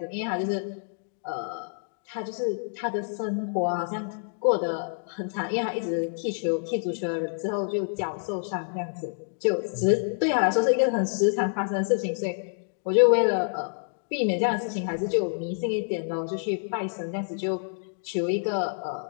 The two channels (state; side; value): silent; right; digital silence